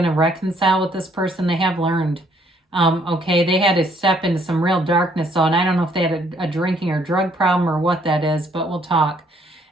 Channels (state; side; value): normal; both; correlation 0.66